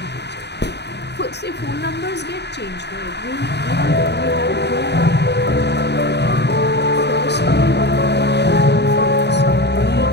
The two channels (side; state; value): right; late; 0.49 ms